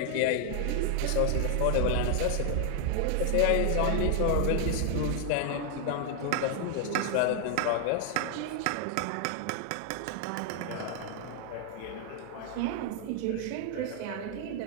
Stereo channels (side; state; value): both; different; correlation 0.00